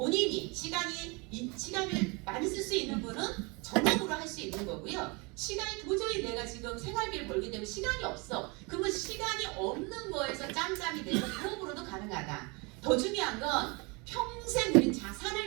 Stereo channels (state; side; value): quieter; left; 28.8 dB